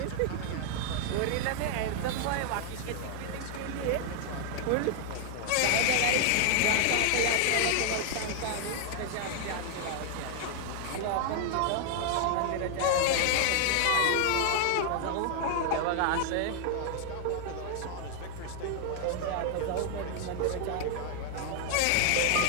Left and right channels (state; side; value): different; both; correlation 0.00